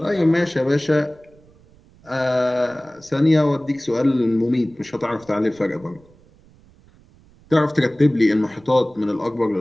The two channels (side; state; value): right; noise; rumble, 28 dB below the sound